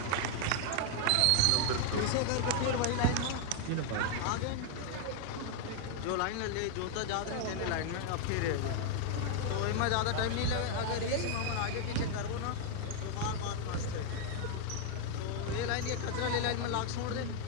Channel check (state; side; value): different; both; correlation 0.00